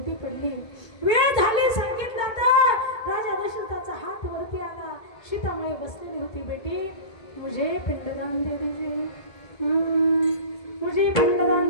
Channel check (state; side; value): late; right; 1.7 ms